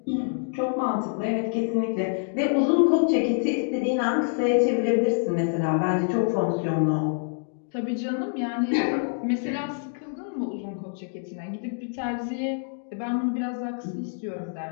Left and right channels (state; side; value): silent; right; digital silence